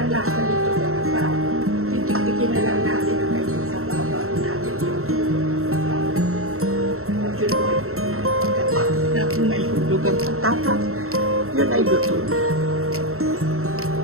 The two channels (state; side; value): late; left; 0.63 ms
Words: nito para titik-tikin na lang natin ang kanyang sa baba natin yung majuloy na kung may hulog ang patatas, yun ay luto na.